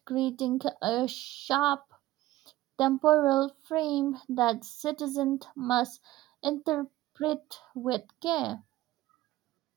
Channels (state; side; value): quieter; left; 16.4 dB